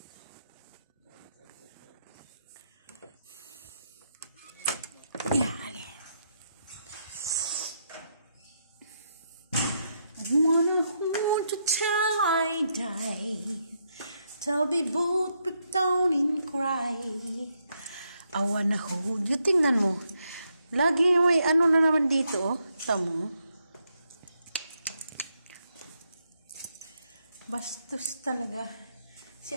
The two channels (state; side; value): inverted; both; correlation -0.79